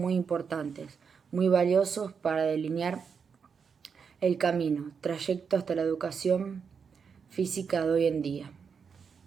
importantes, muy valiosos para delinear el camino, trayecto hasta la educación física de hoy en día.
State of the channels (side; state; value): left; quieter; 6.2 dB